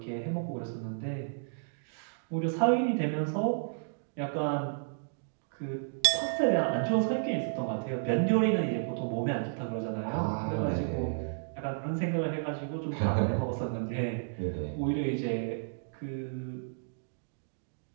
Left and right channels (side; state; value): left; silent; digital silence